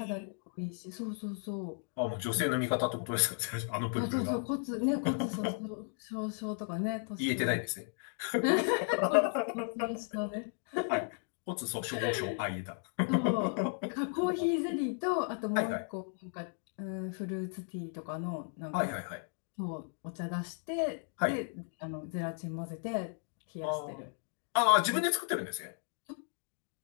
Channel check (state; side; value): silent; right; 54 dB below the other